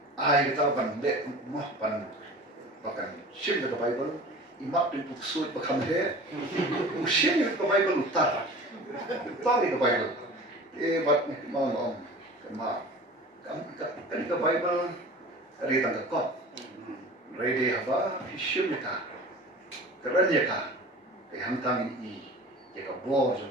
Ai kita bandek mah bahkan isim di Bible, imak di buku surat bahkan he, isim di Bible utara di Bible. Bat mau kema kan ke Bible ri tang ko ready haba hishim ka keren ya ka hantang I ya ka bo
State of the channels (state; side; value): normal; both; correlation 0.39